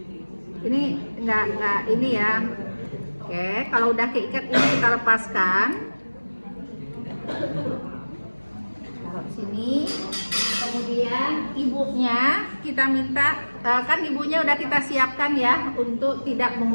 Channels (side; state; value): both; inverted; correlation -1.00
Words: Ini enggak ini ya. Oke, kalau udah keikat ini kita lepaskan. Taruh sini. Kemudian ibunya kita minta, kan ibunya udah kita siapkan ya untuk tidak